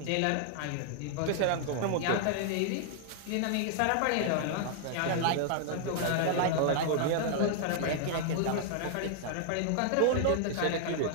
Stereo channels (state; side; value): different; both; correlation 0.00